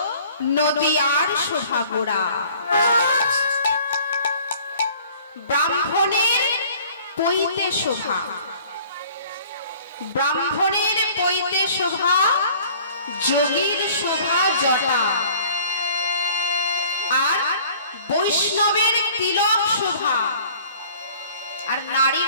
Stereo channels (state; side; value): inverted; both; correlation -0.51